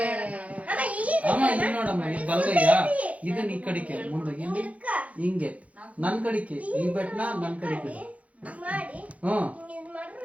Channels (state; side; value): late; left; 0.067 ms